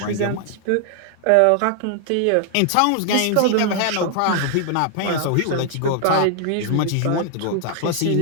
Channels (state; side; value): different; both; correlation 0.00